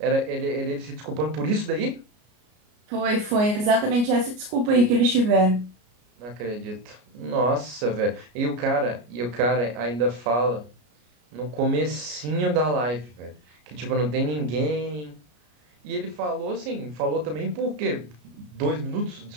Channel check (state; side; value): late; left; 33 ms